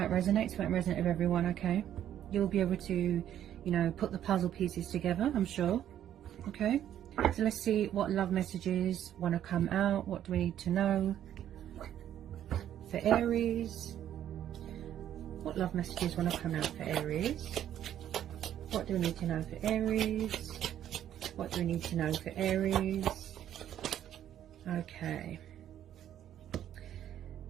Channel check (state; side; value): quieter; left; 10.9 dB